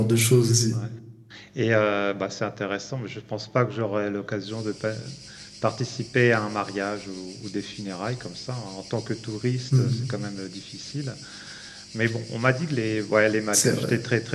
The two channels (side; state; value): both; identical; correlation 1.00